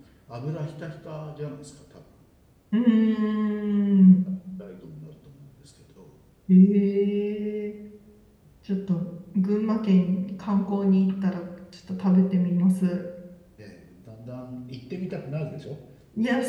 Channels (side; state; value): both; identical; correlation 1.00